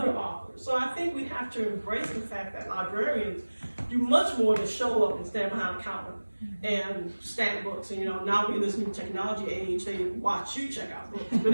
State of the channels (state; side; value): inverted; both; correlation -1.00